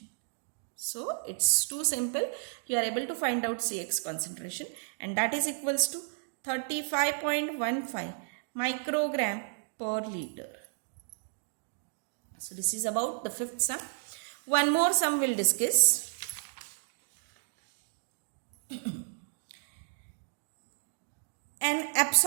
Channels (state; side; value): silent; left; digital silence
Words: So it's too simple. You are able to find out CX concentration, and that is equals to 35.15 microgram per liter. So this is about the fifth sum. One more sum we'll discuss. An